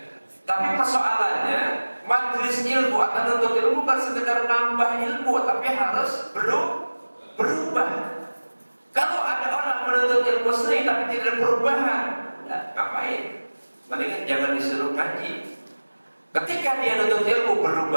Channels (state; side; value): inverted; both; correlation -1.00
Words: Tapi persoalannya majelis ilmu atau nuntut ilmu bukan sekedar nambah ilmu, tapi harus berubah. Kalau ada orang menuntut ilmu seni tapi tidak perubahan, ya, ngapain? Mendingan jangan disuruh ngaji. Ketika dia menuntut ilmu